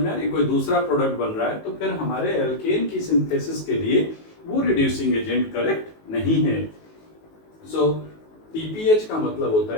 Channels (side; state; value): right; late; 19 ms